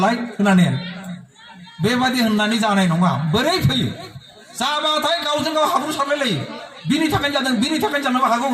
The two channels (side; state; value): both; identical; correlation 1.00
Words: होननानै बेबादि होननानै जानाय नङा बोरै फैयो जाबाथाय गावजों गाव हाब्रु सारलायलायो बिनि थाखायनो जादों बिनि थाखायनो जानोबो हागौ